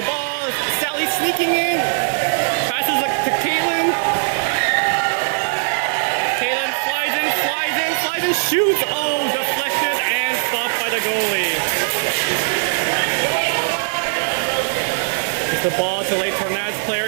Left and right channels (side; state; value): left; silent; 66 dB below the other